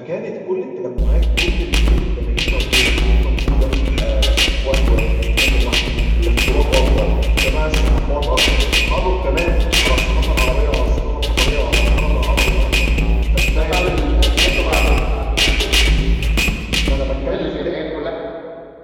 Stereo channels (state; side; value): identical; both; correlation 1.00